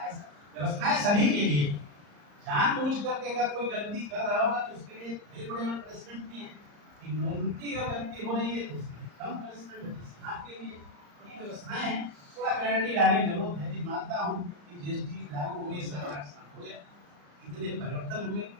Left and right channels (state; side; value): late; left; 34 ms